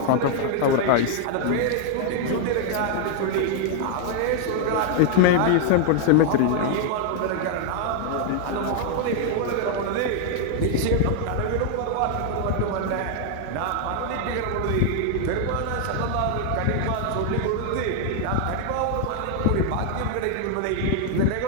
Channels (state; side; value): different; both; correlation 0.00